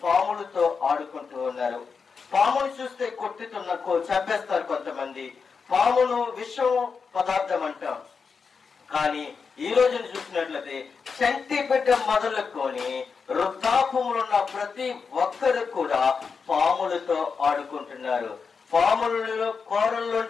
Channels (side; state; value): right; quieter; 5.4 dB